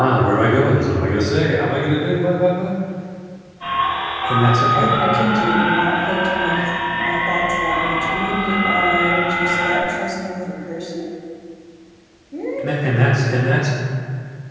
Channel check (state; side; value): identical; both; correlation 1.00